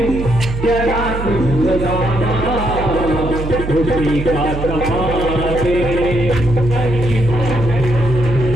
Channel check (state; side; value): noise; right; hum, 6 dB below the sound